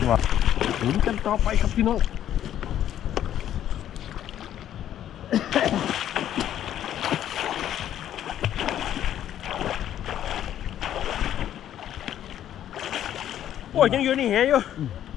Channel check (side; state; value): right; quieter; 11.1 dB